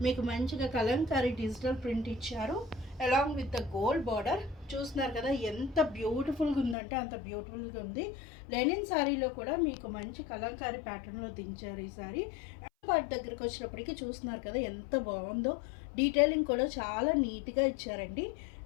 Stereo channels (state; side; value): drops out; right; at 6.8 s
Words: మీకు మంచిగా కలంకారీ డిజిటల్ ప్రింట్ ఇచ్చారు along with the gold border. చూస్తున్నారు కదా, ఎంత బ్యూటిఫుల్గా ఉందంటే అంత బ్యూటిఫుల్గా ఉంది. లెనిన్ శారీలో కూడా మీకు మంచి కలంకారీ ప్యాటర్న్లో దించారు ఈ శారీ. పార్ట్ దగ్గరికి వచ్చినప్పటికీ చూస్తున్నారు కదా ఎంత బాగుందో. డీటెయిలింగ్ కూడా చాలా నీట్గా ఇచ్చారండి.